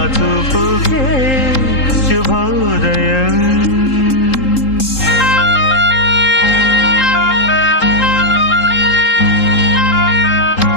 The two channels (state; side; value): late; right; 3.8 ms